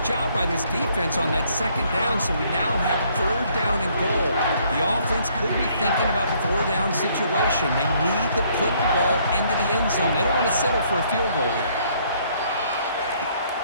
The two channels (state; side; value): inverted; both; correlation -0.65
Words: job by this defense on that second down, so we now have third down and goal. The offense could be thinking about the four-down situation. They need to put the ball into the end zone. They don't want to settle for a field goal here.